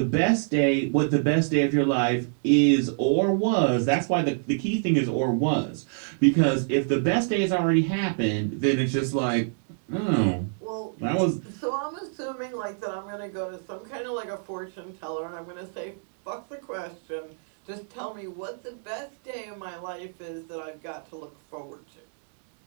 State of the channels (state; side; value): silent; left; digital silence